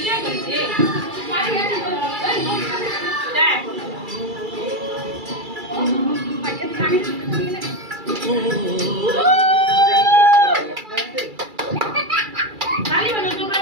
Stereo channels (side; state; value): left; late; 2.3 ms